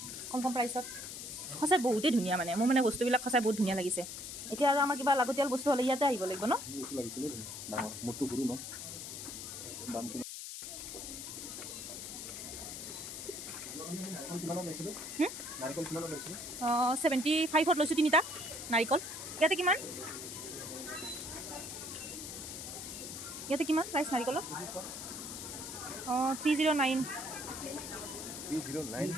কম প্ৰাইচত সঁচাই বহুতেই ধুনীয়া মানে মোৰ মানে বস্তুবিলাক সঁচাই বহুত ধুনীয়া লাগিছে এতিয়া আৰু আমাৰ কিবা লাগতিয়াল বস্তু হ'লে ইয়াতে আহিব লাগিব ন এইটো লাগিছিলে ডাঙৰ মোৰটো সৰু ন দাম কিমান কিমানত লৈছিলোঁ নাৰিকল কিমানত লৈছিলোঁ 75ত লৈছোঁ তিনিটা নাৰিকল ইয়াতে কিমান প্ৰাইচ নাৰিকলৰ 309 309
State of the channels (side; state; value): left; noise; hiss, 8 dB below the sound